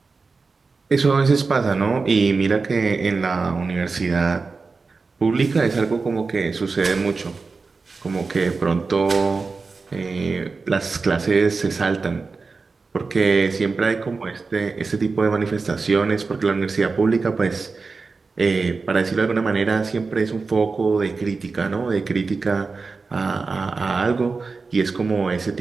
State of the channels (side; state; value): left; quieter; 4.3 dB